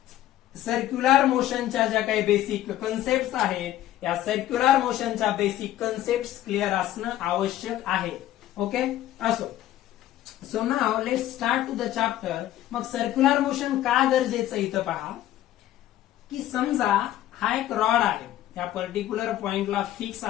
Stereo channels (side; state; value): right; quieter; 13.5 dB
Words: सर्क्युलर मोशनच्या ज्या काही बेसिक कन्सेप्ट आहेत या सर्क्युलर मोशनच्या बेसिक कन्सेप्ट क्लिअर असणं आवश्यक आहे. ओके, असो. So now let's start to the chapter. मग सर्क्युलर मोशन का गरजेचं इथं पहा की समजा हा एक रॉड आहे, या पर्टिक्युलर पॉइंटला फिक्स